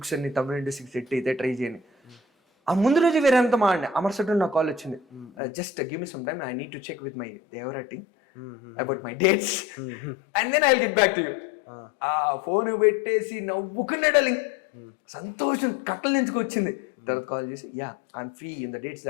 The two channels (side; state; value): right; drops out; at 5.3 s